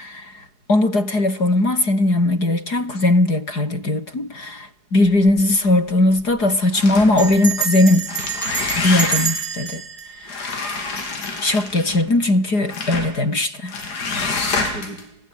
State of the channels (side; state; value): right; late; 4.8 ms